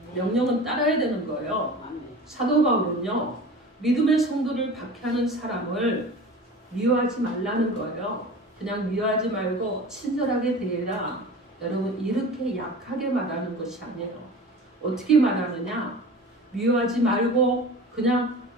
명령은 따라야 되는 거예요. 사도 바울은요, 믿음의 성도를 박해하는 사람을 미워하지 말라는 거예요. 그냥 미워하지 말고 친절하게 대해라. 여러분, 이렇게 약하게 말하는 것이 아니에요. 어떻게 말하느냐? 미워하지 말고 그냥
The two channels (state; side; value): normal; both; correlation 0.37